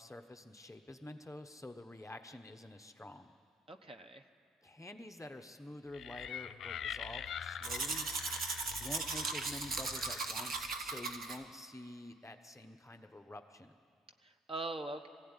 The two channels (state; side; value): normal; both; correlation 0.56